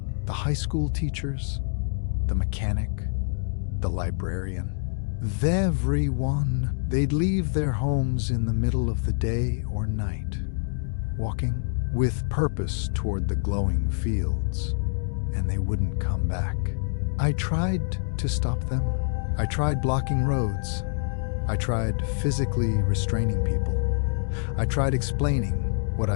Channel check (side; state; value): right; silent; digital silence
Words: the high school teachers, the mechanic, the librarian. Everyone, they'd leave their homes in the middle of the day or night, walking with purpose toward the glowing fields, and they wouldn't come back. I tried to stop them. I tried blocking roads. I tried physically restraining people. I tried explaining what